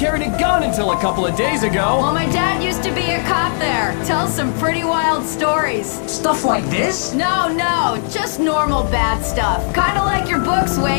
a gun until a couple of days ago. Well, my dad used to be a cop there. Tells some pretty wild stories. Stuff like this? No, just normal bad stuff. Kinda like your books,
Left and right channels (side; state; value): right; silent; digital silence